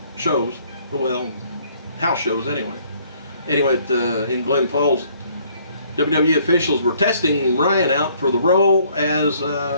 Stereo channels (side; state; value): both; inverted; correlation -0.63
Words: shows. Well, house shows anyway. Anyway, in Glens Falls, WWE officials were testing Ryan out for the role as